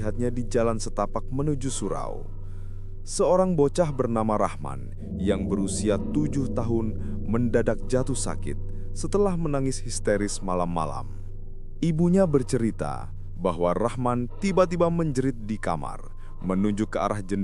di jalan setapak menuju surau. Seorang bocah bernama Rahman yang berusia 7 tahun mendadak jatuh sakit setelah menangis histeris malam-malam. Ibunya bercerita bahwa Rahman tiba-tiba menjerit di kamar, menunjuk ke arah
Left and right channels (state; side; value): identical; both; correlation 1.00